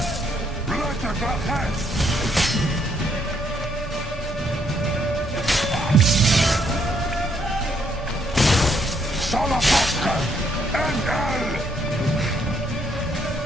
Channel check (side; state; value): both; normal; correlation 0.71